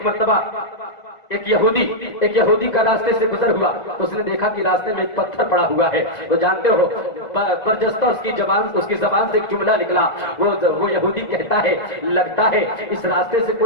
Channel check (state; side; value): late; right; 2.0 ms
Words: مرتبہ ایک یہودی کا راستے سے گزر ہوا تو اس نے دیکھا کہ راستے میں ایک پتھر پڑا ہوا ہے، تو جانتے ہو برجستہ اس کی زبان سے ایک جملہ نکلا، وہ یہودی کہتا ہے، لگتا ہے اس راستے سے